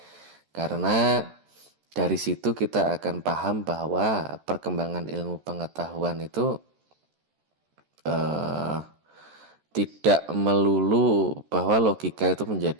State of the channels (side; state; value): left; late; 13 ms